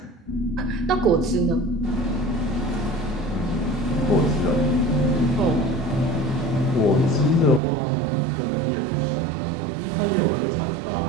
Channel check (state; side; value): drops out; left; at 7.6 s